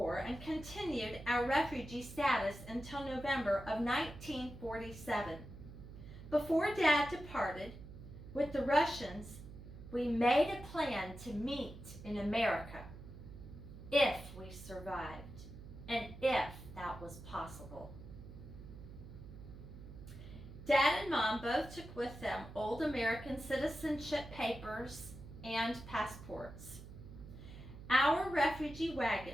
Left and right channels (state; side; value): noise; right; hum, 14 dB below the sound